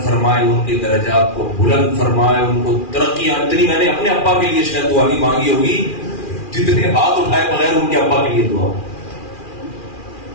فرمائے, ان کے درجات کو بلند فرمائے, ان کو ترقیاں. اتنی میں نے اپنے ابا کے لیے شاید دعا نہیں مانگی ہوگی جتنے ہاتھ اٹھائے بغیر ان کے ابا کے لیے دعا.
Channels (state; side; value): late; right; 2.4 ms